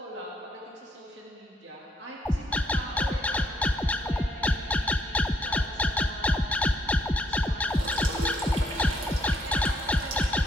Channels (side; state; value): both; normal; correlation 0.71